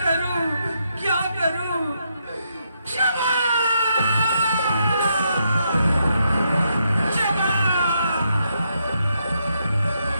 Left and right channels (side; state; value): both; inverted; correlation -0.78